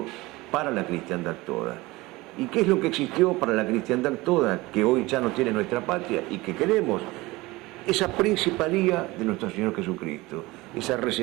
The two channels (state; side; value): quieter; left; 20.9 dB